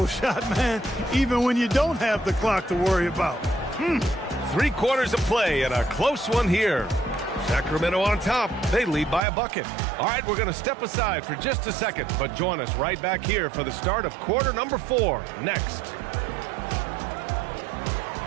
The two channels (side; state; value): left; drops out; at 9.2 s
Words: shot, man, even when you don't have the clock to worry about. 3 quarters of play and a close one here. Sacramento on top. They lead by a bucket. All right, we're going to step aside for just a second, but join us right back here for the start of quarter number 4 next.